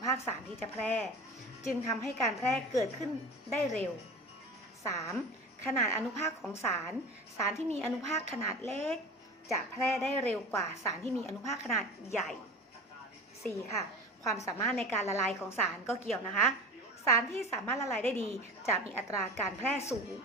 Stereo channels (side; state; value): both; normal; correlation 0.33